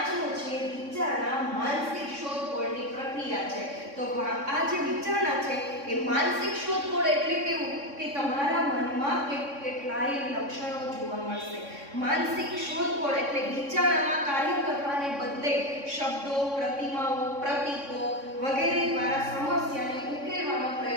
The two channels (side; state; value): left; late; 3.6 ms